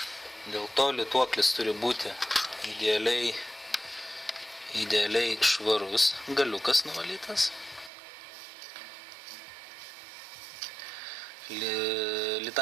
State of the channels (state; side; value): drops out; left; at 7.9 s